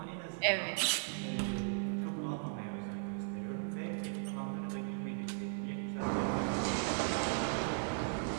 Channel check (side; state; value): left; silent; digital silence